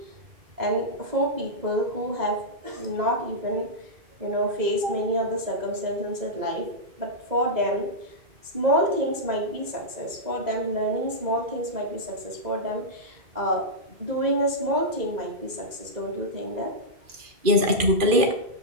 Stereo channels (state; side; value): late; left; 2.4 ms